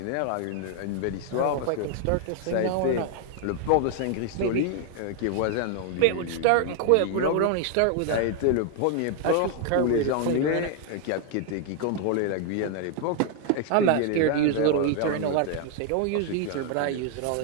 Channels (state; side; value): different; both; correlation 0.00